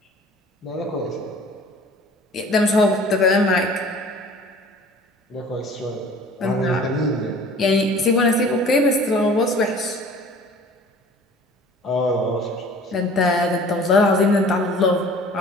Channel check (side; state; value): both; normal; correlation 0.47